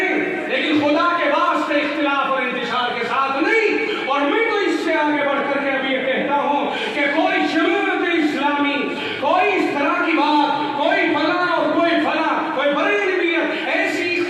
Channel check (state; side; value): identical; both; correlation 1.00